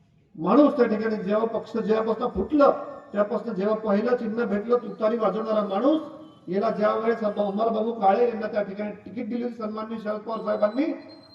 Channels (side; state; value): both; identical; correlation 1.00